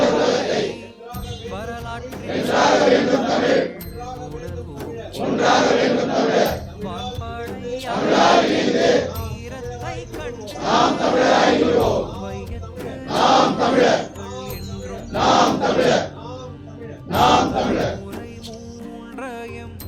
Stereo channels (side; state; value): both; identical; correlation 1.00